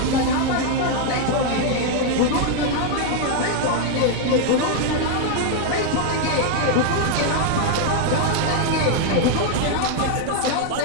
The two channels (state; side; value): different; both; correlation 0.00